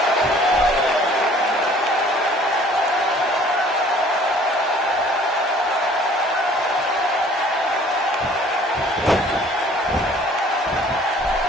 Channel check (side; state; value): both; normal; correlation 0.54